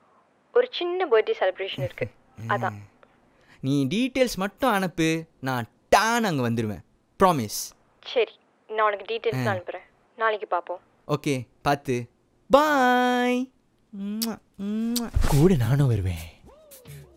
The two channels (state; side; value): identical; both; correlation 1.00